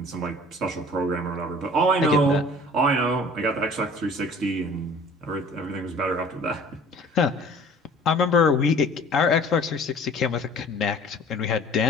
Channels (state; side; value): normal; both; correlation 0.48